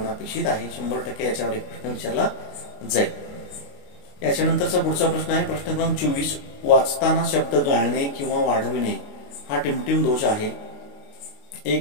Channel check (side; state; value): right; late; 28 ms